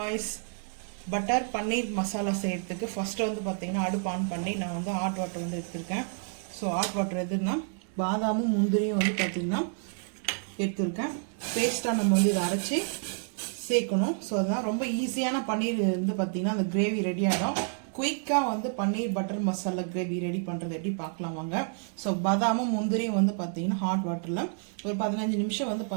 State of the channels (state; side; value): silent; left; 56 dB below the other